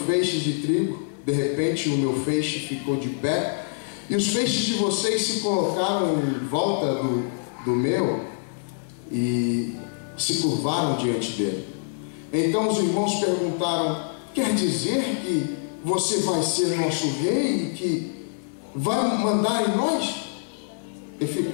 de trigo. De repente o meu feixe ficou de pé e os feixes de vocês se colocaram em volta do meu e se curvaram diante dele. Então os irmãos perguntaram: quer dizer que você vai ser nosso rei e que vai mandar em nós? E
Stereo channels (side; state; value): right; silent; 62 dB below the other